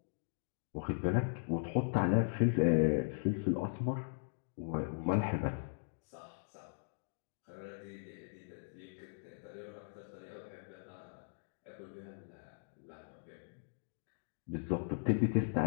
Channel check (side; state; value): right; silent; digital silence